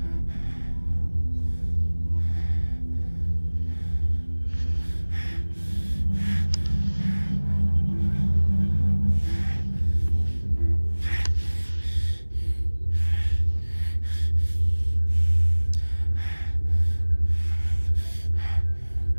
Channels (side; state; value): both; inverted; correlation -1.00